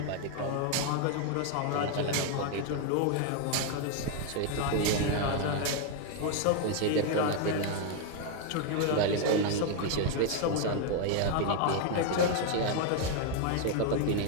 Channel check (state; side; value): different; both; correlation 0.01